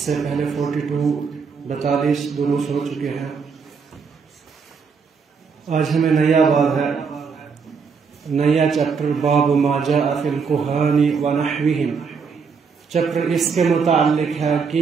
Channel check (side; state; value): left; quieter; 5.6 dB